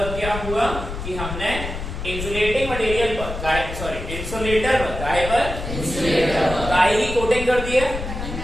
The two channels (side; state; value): left; noise; rumble, 7 dB below the sound